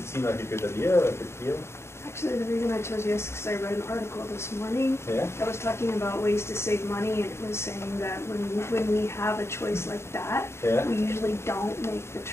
seem like a good idea or a good deal? Actually, the reason I chose yes is because I read an article this morning that was talking about ways to save money, and it was saying that when we have a choice like that, we usually don't make the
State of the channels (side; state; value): right; late; 0.13 ms